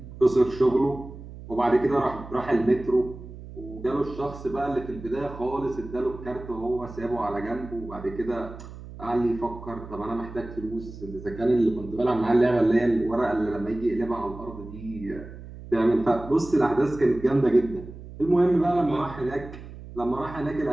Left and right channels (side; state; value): right; noise; hum, 14 dB below the sound